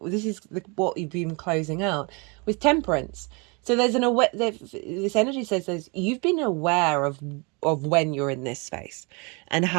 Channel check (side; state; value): left; quieter; 30.5 dB